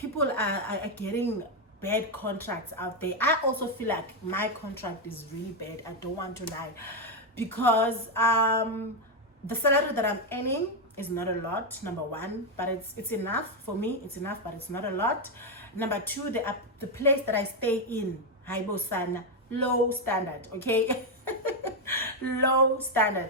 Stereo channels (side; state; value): both; normal; correlation 0.04